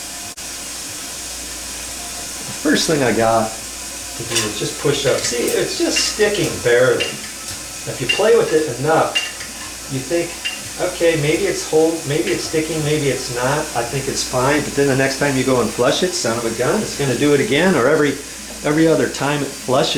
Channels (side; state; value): both; identical; correlation 1.00